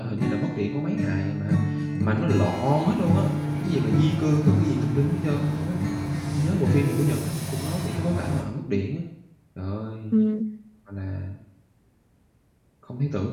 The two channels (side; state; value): both; identical; correlation 1.00